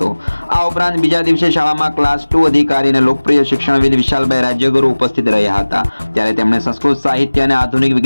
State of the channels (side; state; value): both; inverted; correlation -1.00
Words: આ ઉપરાંત બીજા દિવસે શાળામાં ક્લાસ 2 અધિકારી અને લોકપ્રિય શિક્ષણવિદ વિશાલભાઈ રાજ્યગુરુ ઉપસ્થિત રહ્યા હતા। ત્યારે તેમણે સંસ્કૃત સાહિત્ય અને આધુનિક